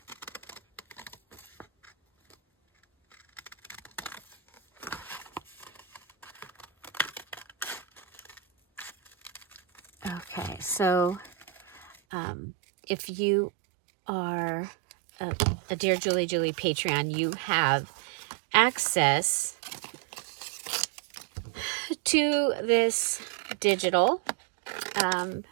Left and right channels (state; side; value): drops out; left; at 12.0 s